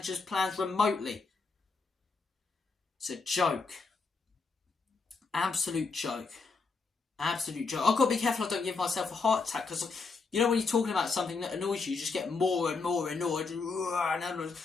plans remotely. It's a joke. Absolute joke. Absolute joke. I've got to be careful I don't give myself a heart attack because, you know, when you're talking about something that annoys you, you just get more and more annoyed. And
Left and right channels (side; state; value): right; quieter; 4.4 dB